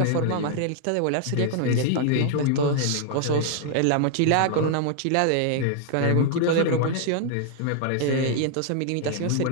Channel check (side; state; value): both; different; correlation 0.00